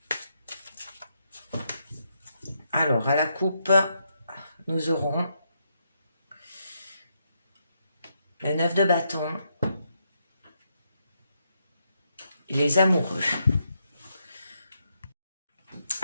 Alors, à la coupe, nous aurons le 9 de bâton, les amoureux.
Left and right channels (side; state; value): both; inverted; correlation -0.79